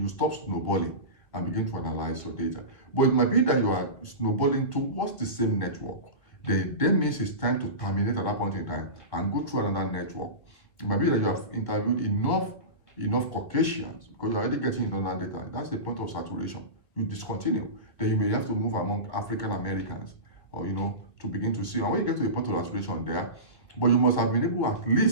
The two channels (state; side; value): late; right; 1.9 ms